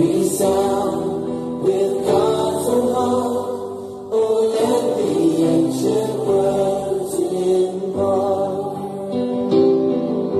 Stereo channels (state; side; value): identical; both; correlation 1.00